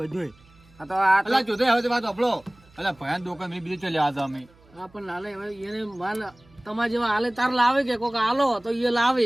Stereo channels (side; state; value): right; noise; hum, 29 dB below the sound